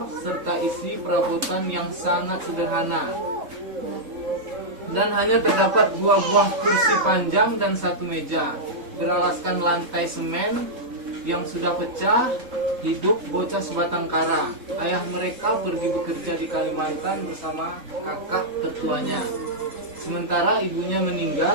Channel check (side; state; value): left; late; 3.7 ms